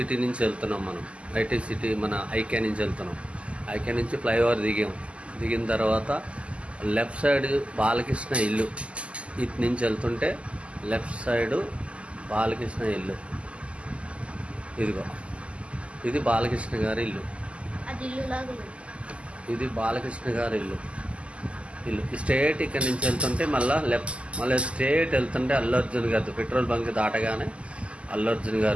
నుంచి వెళ్తున్నాం మనం. హైటెక్ సిటీ మన ఐక్యా నుంచి వెళ్తున్నాం. ఐక్యా నుంచి ఫ్లైఓవర్ దిగిన తర్వాత లెఫ్ట్ సైడ్ బాలకృష్ణ ఇల్లు. ఇటు నుంచి వెళ్తుంటే లెఫ్ట్ సైడు బాలకృష్ణ ఇల్లు. ఇదిగో ఇది బాలకృష్ణ గారి ఇల్లు. ఇది బాలకృష్ణ గారి ఇల్లు. స్ట్రేట్ ఇక్కడ నుంచి వెళ్తుంటే మళ్ళీ స్ట్రేట్ వెళ్తుంటే అల్లు అర్జున్ గారి పెట్రోల్ బంక్ దాటగానే అల్లు అర్జున్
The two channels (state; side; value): late; left; 0.057 ms